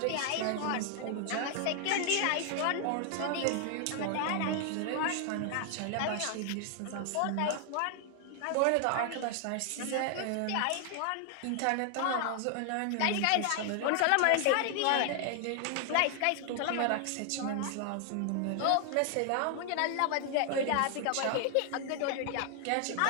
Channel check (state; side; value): different; both; correlation 0.00